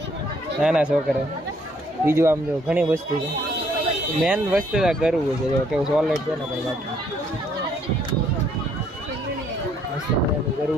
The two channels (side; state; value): both; normal; correlation 0.66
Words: નાના છોકરા. બીજું આમ જો ઘણી વસ્તુ છે, મેન વસ્તુ કરવું છે. જો કેવું સોલેટ છે ને ભાઈ, બાકી મસ્ત મજાનું